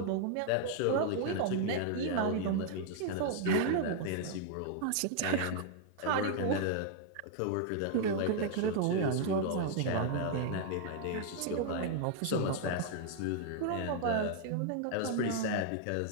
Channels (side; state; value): both; different; correlation 0.00